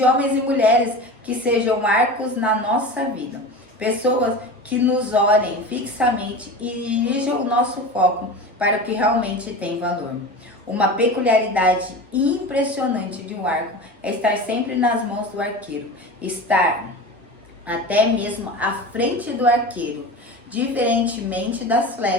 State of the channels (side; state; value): both; normal; correlation 0.30